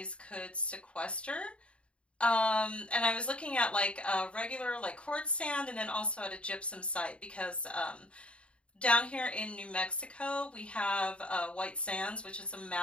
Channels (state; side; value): late; right; 0.059 ms